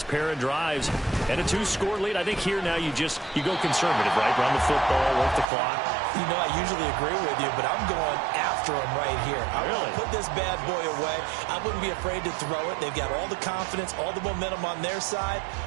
pair of drives and a 2-score lead. I think here now you go conservative, right? Run the football, work the clock. You know, I usually agree with you, but I'm going after him right here. I want to put this bad boy away. I wouldn't be afraid to throw it. They've got all the confidence, all the momentum on their side.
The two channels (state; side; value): drops out; left; at 5.5 s